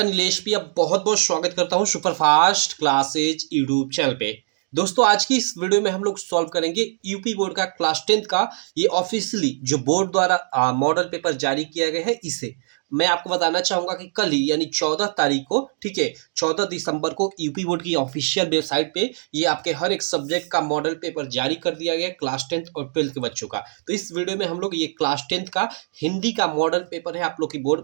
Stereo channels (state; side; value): silent; left; digital silence